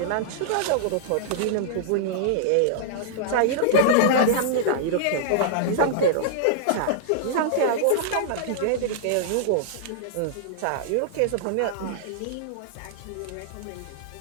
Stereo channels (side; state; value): both; different; correlation -0.02